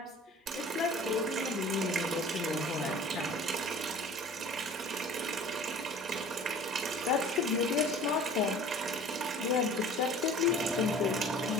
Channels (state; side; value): normal; both; correlation 0.45